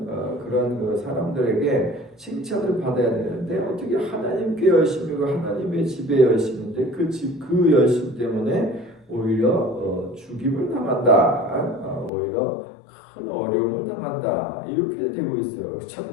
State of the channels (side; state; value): right; drops out; at 12.1 s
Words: 그런 그 사람들에게 칭찬을 받아야 되는데 어떻게 하나님께 열심이고 하나님의 집에 열심인데 그 열심 때문에 오히려 죽임을 당한다. 오히려 큰 어려움을 당한다. 이렇게 되고 있어요.